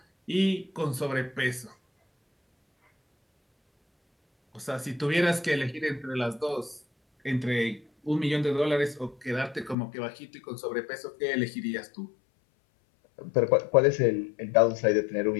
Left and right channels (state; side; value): drops out; right; at 9.8 s